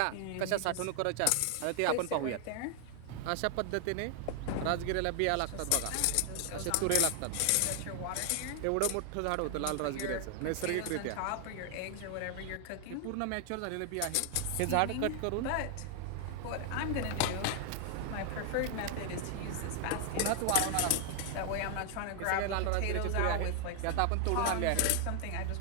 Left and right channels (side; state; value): both; different; correlation 0.00